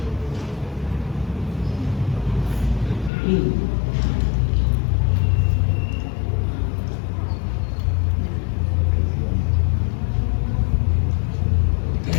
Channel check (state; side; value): drops out; right; at 3.1 s